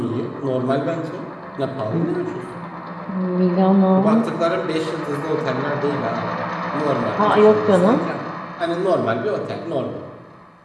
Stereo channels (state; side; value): identical; both; correlation 1.00